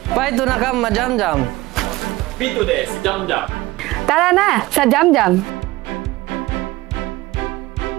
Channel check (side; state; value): left; quieter; 19.3 dB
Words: Paito na ka ma-Jam-Jam. Pito des, Jam-Jam. Tara na sa Jam Jam.